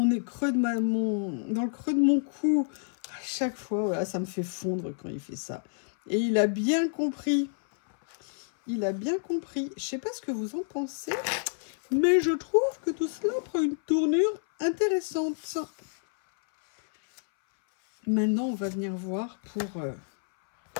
creux de dans le creux de mon cou. À chaque fois, voilà, ça me fait fondre quand il fait ça. Et il a bien compris. Il a bien compris. Je sais pas ce que vous en pensez, mais je trouve que tout cela prend une tournure intéressante. Maintenant, on va venir voir pour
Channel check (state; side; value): silent; right; 59 dB below the other